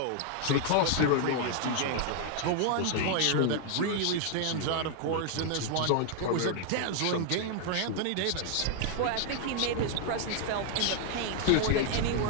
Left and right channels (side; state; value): both; different; correlation 0.00